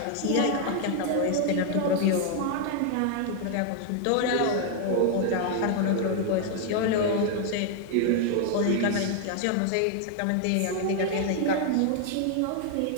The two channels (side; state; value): both; different; correlation 0.00